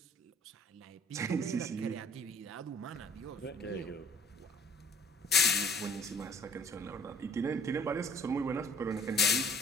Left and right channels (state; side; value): normal; both; correlation 0.53